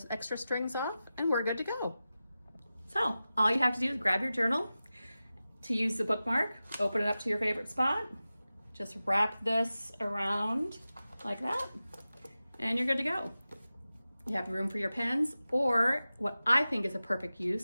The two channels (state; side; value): inverted; both; correlation -0.95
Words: extra strings off, and we're good to go. So all you have to do is grab your journal. To use the bookmark, open it up to your favorite spot. Just wrap this around like that, and you're good to go. You have room for your pens, or what I think is a perfect